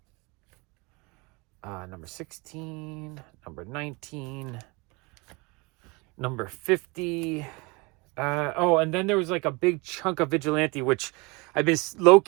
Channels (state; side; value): quieter; left; 27.1 dB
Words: Number 16. Number 19. Number 50. Oh, and then there was like a big chunk of Vigilante, which I've been